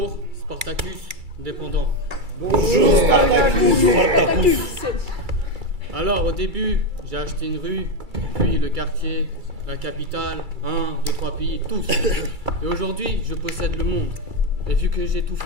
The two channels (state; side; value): late; left; 2.3 ms